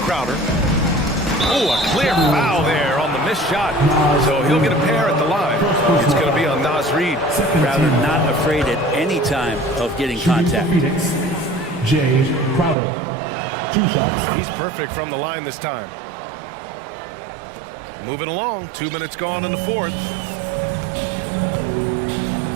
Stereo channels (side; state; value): left; drops out; at 12.8 s